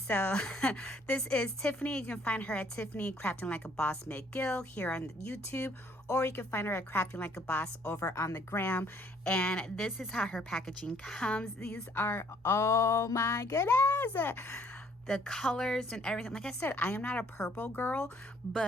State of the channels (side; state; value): both; normal; correlation 0.63